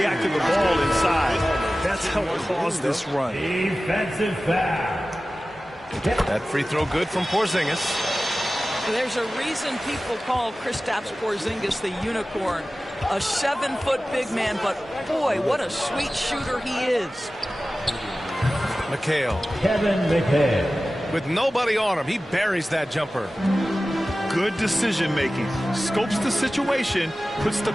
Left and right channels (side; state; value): both; normal; correlation 0.96